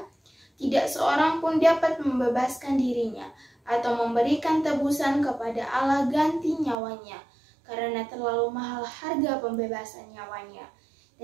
tidak seorang pun dapat membebaskan dirinya atau memberikan tebusan kepada Allah ganti nyawanya, karena terlalu mahal harga pembebasan nyawanya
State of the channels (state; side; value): drops out; left; at 6.8 s